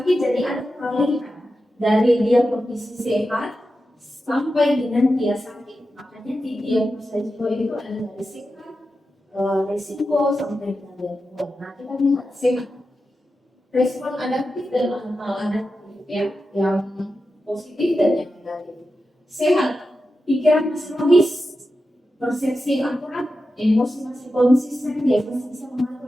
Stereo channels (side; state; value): both; normal; correlation 0.91